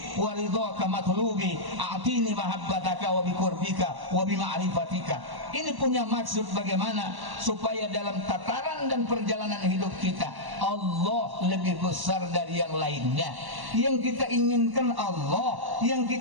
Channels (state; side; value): late; left; 1.1 ms